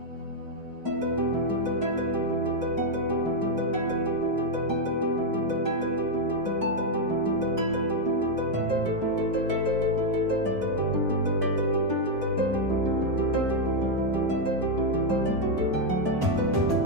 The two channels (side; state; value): left; late; 1.1 ms